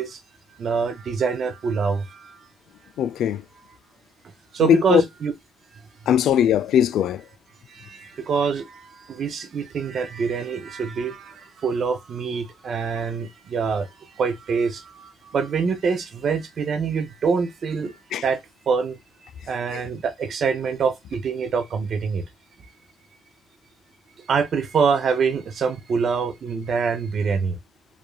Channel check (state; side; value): normal; both; correlation 0.67